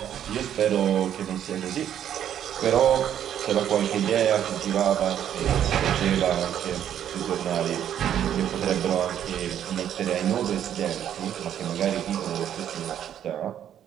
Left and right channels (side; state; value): left; quieter; 10.1 dB